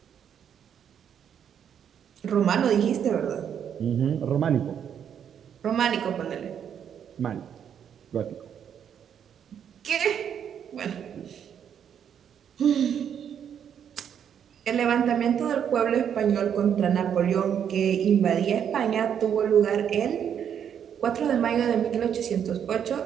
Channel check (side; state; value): left; quieter; 8.5 dB